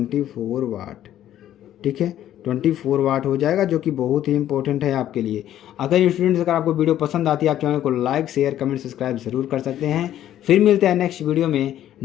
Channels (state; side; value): quieter; right; 11.9 dB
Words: वाट, ठीक है, 24 वाट हो जाएगा, जो कि बहुत ही इंपॉर्टेंट है आपके लिए। अगर स्टूडेंट्स अगर आपको वीडियो पसंद आती है आप चैनल को लाइक शेयर कमेंट सब्सक्राइब जरूर कर सकते हैं। फिर मिलते हैं नेक्स्ट वीडियो में